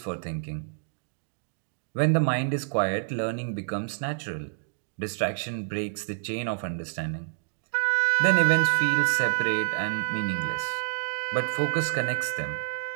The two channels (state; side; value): silent; left; digital silence